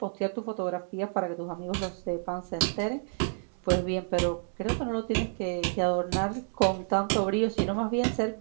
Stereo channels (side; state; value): left; silent; digital silence